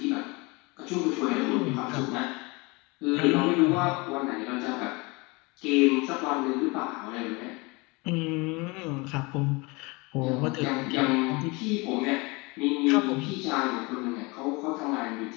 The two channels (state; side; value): quieter; right; 26.4 dB